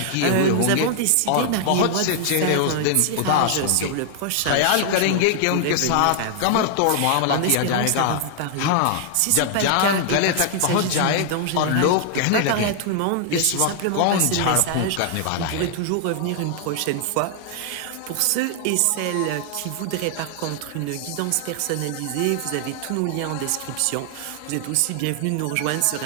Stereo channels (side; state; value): both; different; correlation 0.00